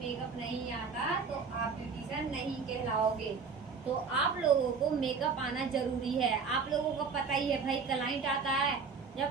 नहीं आता तो आप ब्यूटिशियन नहीं कहलाओगे। तो आप लोगों को मेकअप आना जरूरी है। आप लोगों को पता ही है भाई, क्लाइंट आता है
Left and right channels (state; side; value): quieter; left; 5.4 dB